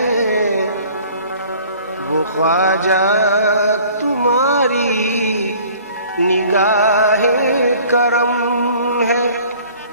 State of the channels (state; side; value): inverted; both; correlation -0.51